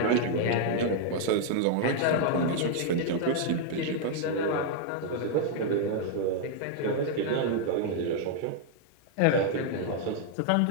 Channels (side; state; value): both; different; correlation 0.00